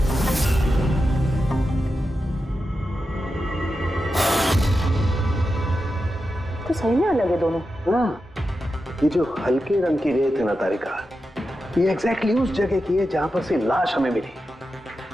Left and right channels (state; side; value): normal; both; correlation 0.90